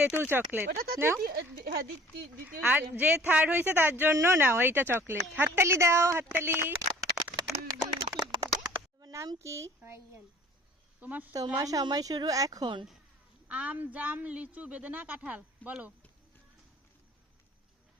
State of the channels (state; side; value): normal; both; correlation 0.50